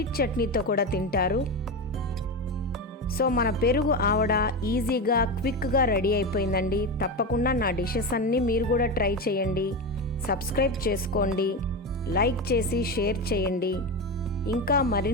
చట్నీతో కూడా తింటారు. సో మన పెరుగు ఆవడ ఈజీగా, క్విక్గా రెడీ అయిపోయిందండి. తప్పకుండా నా డిషెస్ అన్నీ మీరు కూడా ట్రై చేయండి. సబ్స్క్రైబ్ చేసుకోండి, లైక్ చేసి షేర్ చేయండి. ఇంకా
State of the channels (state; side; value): normal; both; correlation 0.18